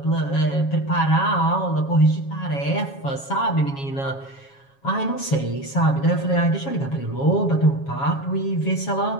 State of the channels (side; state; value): right; late; 7.3 ms